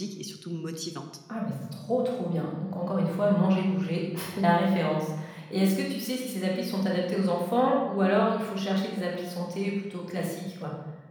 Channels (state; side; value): identical; both; correlation 1.00